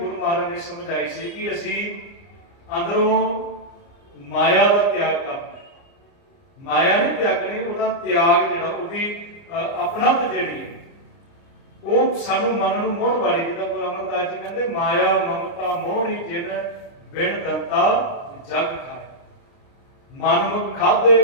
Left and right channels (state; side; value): late; right; 29 ms